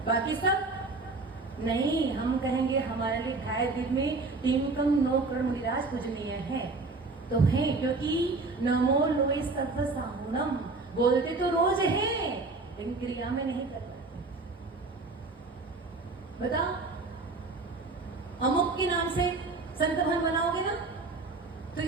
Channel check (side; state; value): left; quieter; 3.6 dB